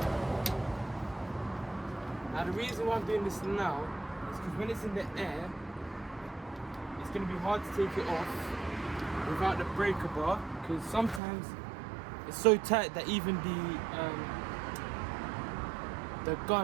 Now the reason why I'm doing this now is because when it's in the air, it's going to be hard to take it off without the breaker bar, because sometimes it's so tight that even the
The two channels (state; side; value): drops out; left; at 11.2 s